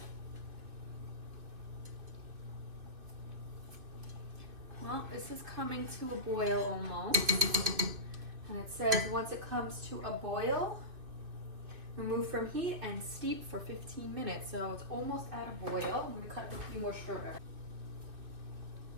Well, this is coming to a boil almost. And it says once it comes to a boil, remove from heat and steep for 15 minutes. So it's almost at a boil. I'm gonna cut a few more strawberries.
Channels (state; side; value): late; left; 2.5 ms